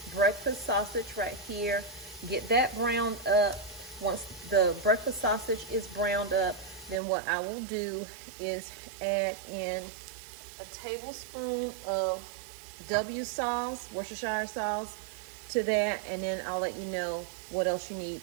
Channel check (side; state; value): left; drops out; at 7.0 s